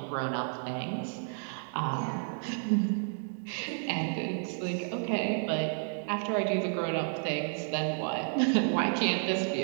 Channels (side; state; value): left; silent; 57 dB below the other